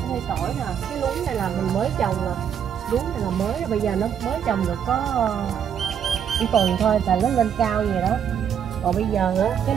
Ở đây tỏi nè, cái luống này là mình mới trồng nè. Luống này là mới, bây giờ nó mới trồng được có một tuần thôi là nó lên cao vậy đó. Còn bây giờ á, cái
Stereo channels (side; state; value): left; quieter; 8.5 dB